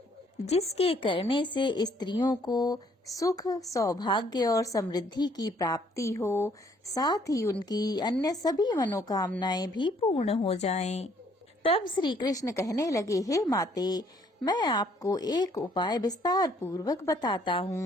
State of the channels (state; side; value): normal; both; correlation 0.64